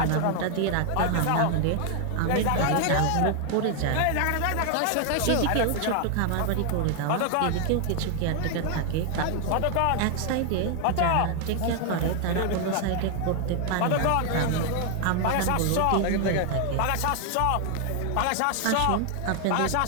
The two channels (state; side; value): different; both; correlation 0.00